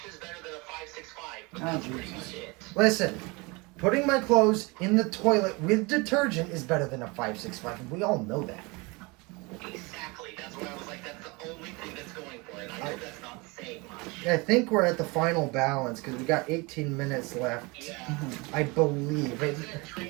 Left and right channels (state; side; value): quieter; left; 26.5 dB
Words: better than a 565, but that's pretty much it. Listen, putting my clothes in the toilet with detergent is better than a 565, and we all know that. Exactly. That's why I was like, that's the only thing that's going for it. I know that's not saying much. I think we're at the final balance because we got 18 minutes left. Yeah. I believe. Does it drain